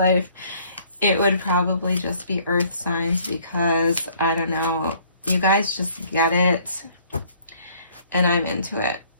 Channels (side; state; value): both; inverted; correlation -0.58